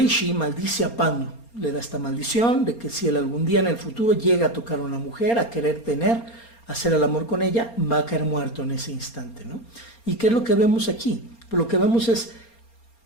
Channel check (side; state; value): right; late; 4.3 ms